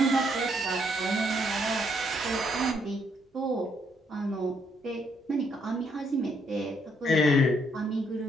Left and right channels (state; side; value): normal; both; correlation 0.72